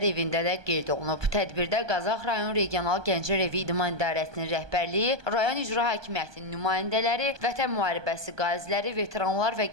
evində də qeyd olunub. Tədbirdə Qazax rayon Regional Gənclər evi İdman İdarəsinin rəhbərliyi, rayon icra hakimiyyətinin nümayəndələri, vətən müharibəsi qaziləri, veteranlar və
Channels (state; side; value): late; left; 1.2 ms